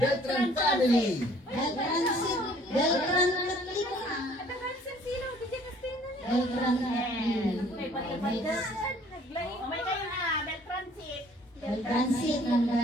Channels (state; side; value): normal; both; correlation 0.56